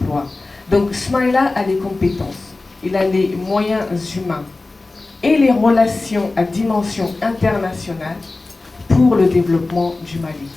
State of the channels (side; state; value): right; quieter; 3.3 dB